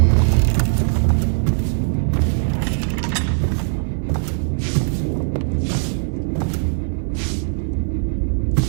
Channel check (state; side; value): silent; left; 57 dB below the other